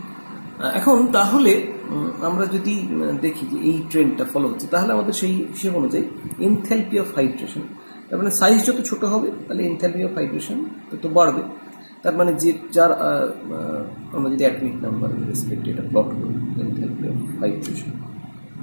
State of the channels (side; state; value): both; inverted; correlation -1.00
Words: এখন তাহলে আমরা যদি দেখি যে এই ট্রেন্ডটা ফলো হচ্ছে, তাহলে আমাদের সেই হিসেব অনুযায়ী এনথালপি অফ হাইড্রেশন, তার মানে সাইজ যত ছোট হবে তাহলে এনথালপি অফ হাইড্রেশন তত বাড়বে। তার মানে যে যার আমরা যদি অ্যাটমিক নাম্বার রেসপেক্ট এটা প্লট করি, enthalpy of hydration